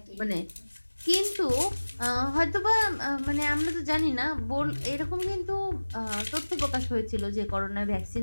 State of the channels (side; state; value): both; inverted; correlation -1.00